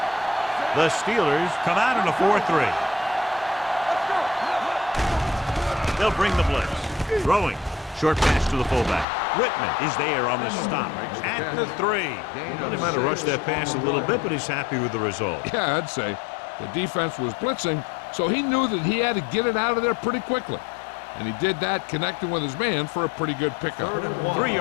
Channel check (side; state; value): right; drops out; at 9.1 s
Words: The Steelers come out in a 4-3. They'll bring the blitz. Throwing. Short pass to the fullback. Whitman is there on the stop at the 3. They might have rushed that pass a little bit, but he's happy with the result. Yeah, I'd say. The defense was blitzing, so he knew that he had to get it out of there pretty quickly. And he did that connecting with his man for a pretty good pickup. 3